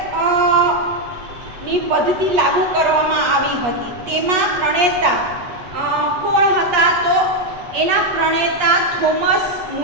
ની પદ્ધતિ લાગુ કરવામાં આવી હતી. તેમાં પ્રણેતા કોણ હતા તો એના પ્રણેતા થોમસ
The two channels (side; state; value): left; late; 8.1 ms